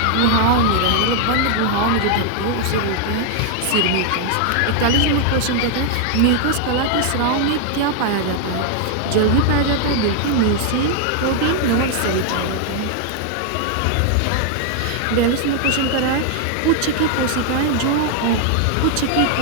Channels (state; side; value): different; both; correlation 0.00